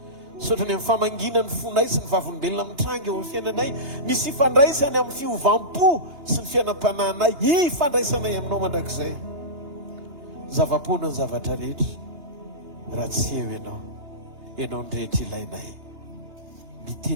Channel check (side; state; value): left; late; 2.9 ms